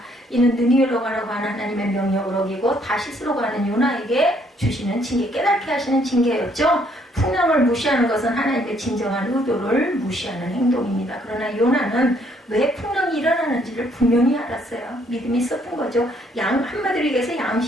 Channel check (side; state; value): both; normal; correlation 0.67